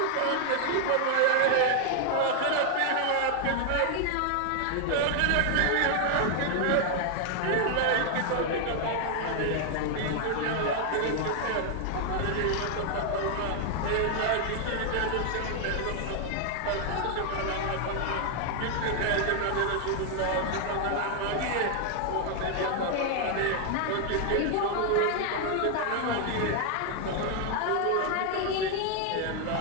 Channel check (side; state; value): both; different; correlation 0.00